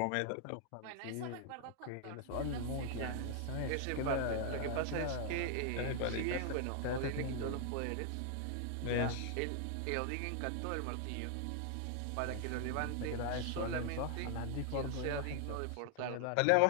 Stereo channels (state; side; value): different; both; correlation 0.00